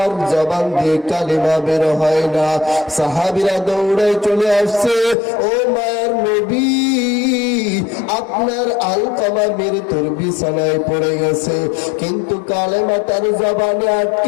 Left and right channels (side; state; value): right; drops out; at 5.2 s